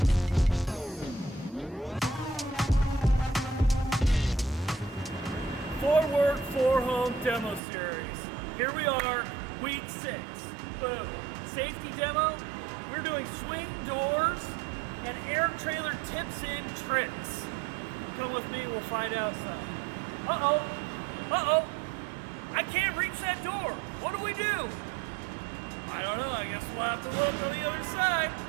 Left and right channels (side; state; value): left; drops out; at 7.6 s